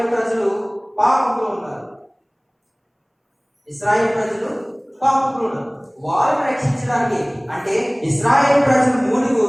ప్రజలు పాపంలో ఉన్నారు. ఇశ్రాయేలు ప్రజలు పాపంలో ఉన్నారు. వారిని రక్షించడానికి, అంటే ఇశ్రాయేలు ప్రజలు మూలుగు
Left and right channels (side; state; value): both; identical; correlation 1.00